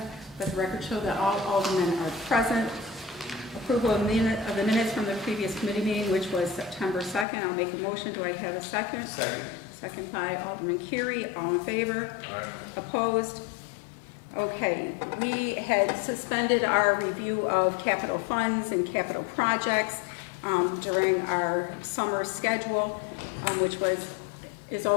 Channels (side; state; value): right; drops out; at 7.2 s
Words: Let the record show that all aldermen are present. Approval of the minutes from the previous committee meeting, which was September 2nd. I'll make a motion. Do I have a second? Second. Second by Alderman Curie. All in favor? Aye. Opposed? Okay, we had suspended our review of capital funds and capital projects during our summer schedule, which is